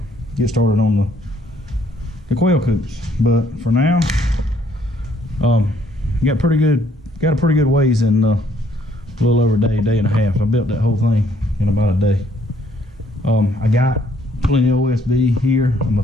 get started on the quail coops. But for now, got a pretty good ways in a little over a day and a half. I built that whole thing in about a day. I got plenty of OSB here. I'm gonna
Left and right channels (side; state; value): both; normal; correlation 0.66